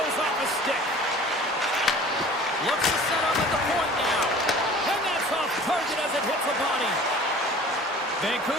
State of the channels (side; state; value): both; normal; correlation 0.45